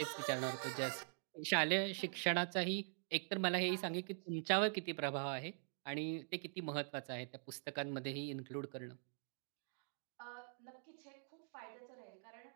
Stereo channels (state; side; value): silent; left; digital silence